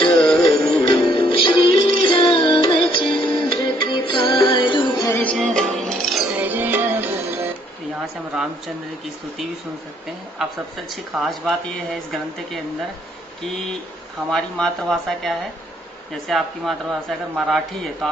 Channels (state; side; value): normal; both; correlation 0.66